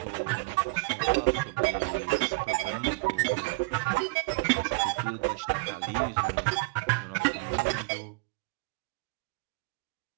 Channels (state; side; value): quieter; left; 27.3 dB